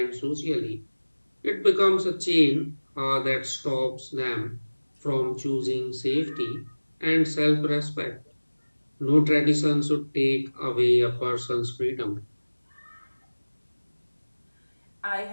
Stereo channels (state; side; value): inverted; both; correlation -1.00